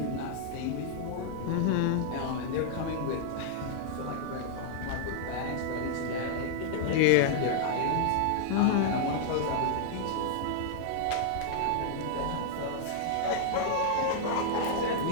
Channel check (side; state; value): both; different; correlation -0.01